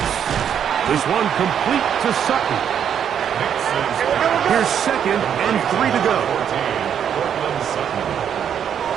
This one complete to Sutton. Here's 2nd and 3 to go.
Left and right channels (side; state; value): left; quieter; 8.6 dB